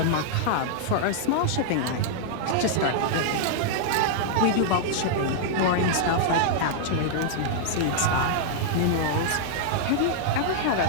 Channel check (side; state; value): both; different; correlation -0.01